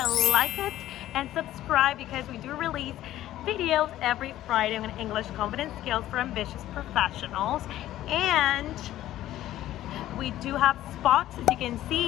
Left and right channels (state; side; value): quieter; right; 13.8 dB